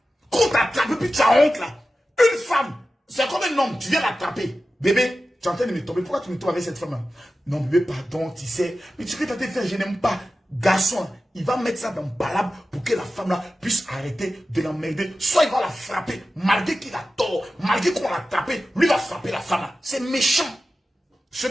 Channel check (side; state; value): both; normal; correlation 0.94